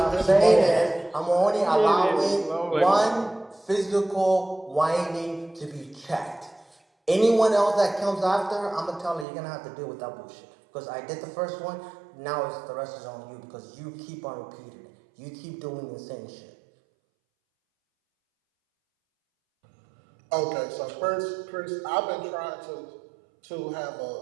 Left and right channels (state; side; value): drops out; left; at 9.2 s